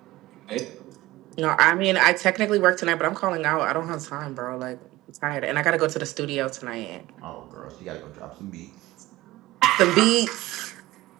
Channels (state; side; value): quieter; left; 18.1 dB